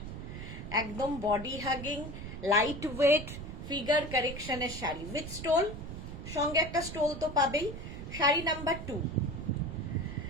একদম body hugging, light weight, figure কারেকশনের শাড়ি উইথ স্টোল, সঙ্গে একটা স্টোল তো পাবেই। শাড়ি নাম্বার 2,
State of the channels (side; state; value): right; noise; rumble, 9 dB below the sound